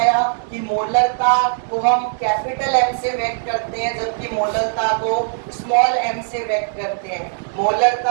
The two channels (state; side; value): silent; left; digital silence